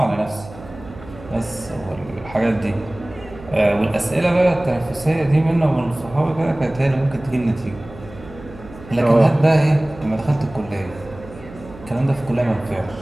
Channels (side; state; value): right; noise; hum, 17 dB below the sound